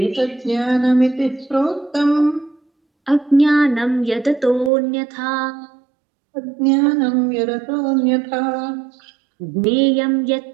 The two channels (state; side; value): drops out; left; at 4.7 s